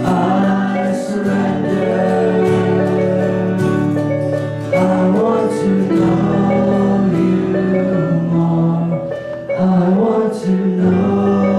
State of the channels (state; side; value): identical; both; correlation 1.00